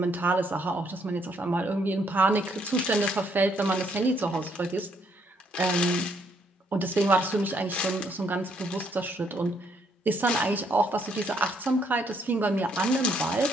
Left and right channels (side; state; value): both; normal; correlation 0.70